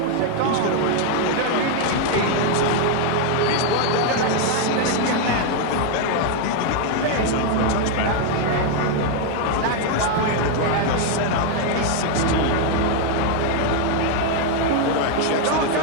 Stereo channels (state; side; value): different; both; correlation 0.01